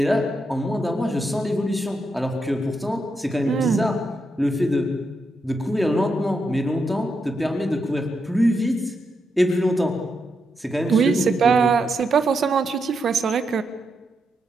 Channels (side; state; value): both; normal; correlation 0.83